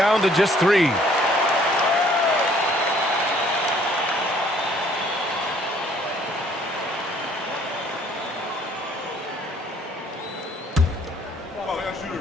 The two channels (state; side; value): normal; both; correlation 0.60